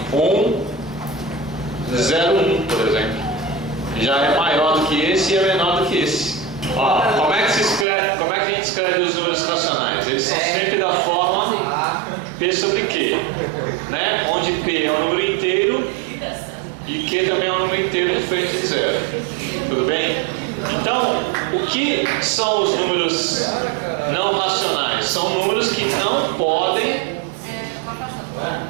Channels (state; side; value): drops out; left; at 7.9 s